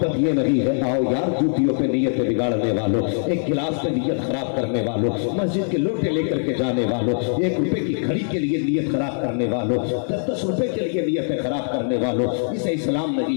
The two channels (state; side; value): silent; right; digital silence